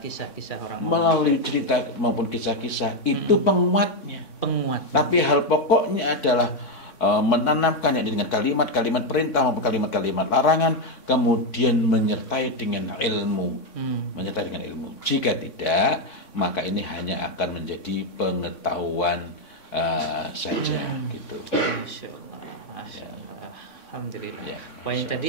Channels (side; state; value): right; late; 3.6 ms